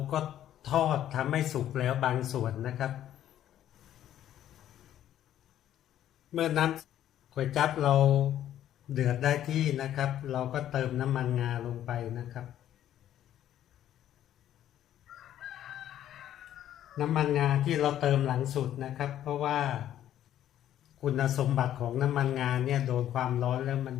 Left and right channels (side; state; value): right; quieter; 11.6 dB